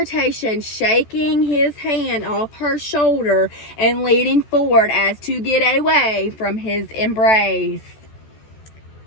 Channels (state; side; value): late; right; 14 ms